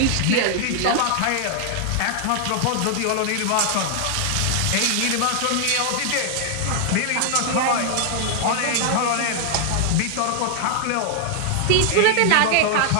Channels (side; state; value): both; different; correlation 0.00